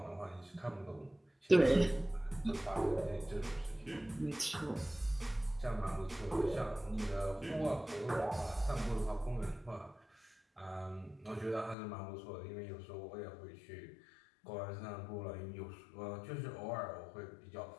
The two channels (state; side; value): drops out; right; at 11.8 s